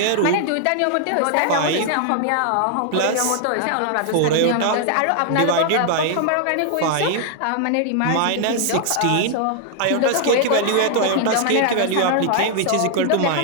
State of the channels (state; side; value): different; both; correlation 0.00